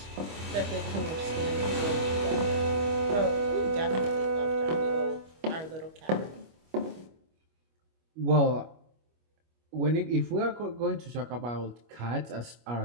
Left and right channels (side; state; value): left; late; 25 ms